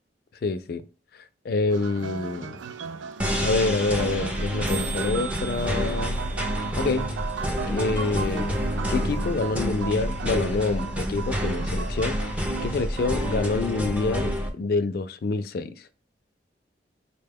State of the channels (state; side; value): normal; both; correlation 0.46